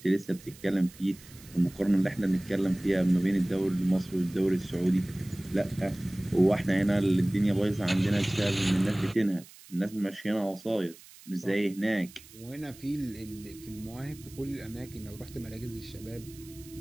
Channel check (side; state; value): right; noise; hiss, 21 dB below the sound